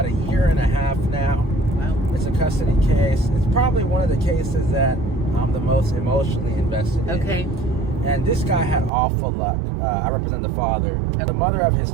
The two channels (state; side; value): drops out; left; at 8.9 s